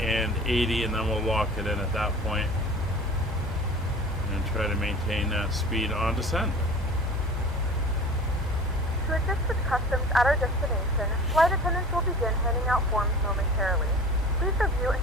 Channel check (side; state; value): both; normal; correlation 0.41